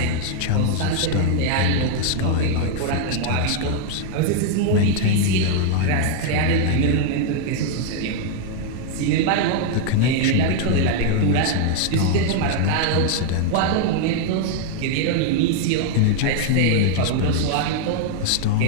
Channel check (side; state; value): both; different; correlation 0.00